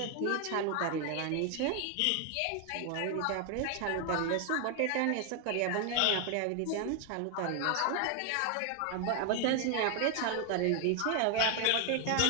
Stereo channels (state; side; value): different; both; correlation 0.01